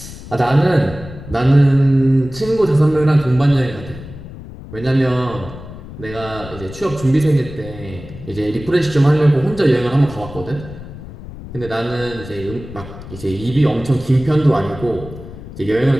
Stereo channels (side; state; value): left; noise; rumble, 14 dB below the sound